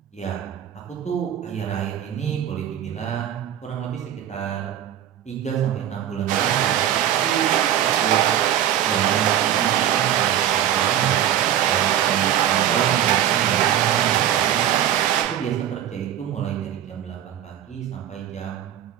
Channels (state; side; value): quieter; left; 10.9 dB